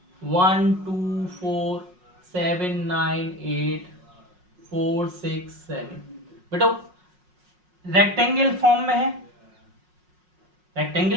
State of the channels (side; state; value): left; late; 5.5 ms